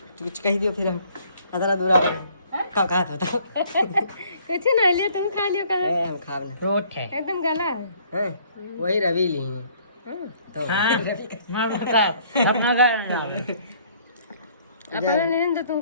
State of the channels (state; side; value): inverted; both; correlation -0.60